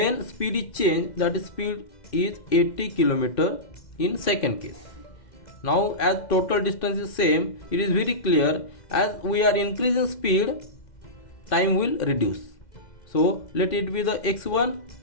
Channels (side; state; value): right; late; 2.0 ms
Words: speed is changed, that is speed is 80 km in second case. Now as total distance is same, it is very clear, as we are increasing speed, time will reduce. So let it be the x1